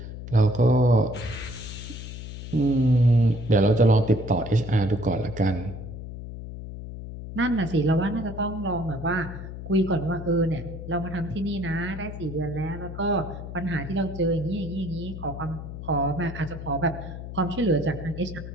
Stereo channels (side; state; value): left; noise; hum, 10 dB below the sound